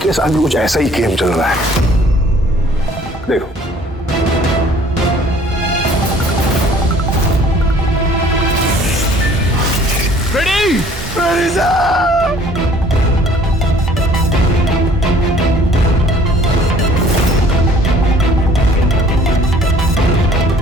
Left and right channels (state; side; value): normal; both; correlation 0.55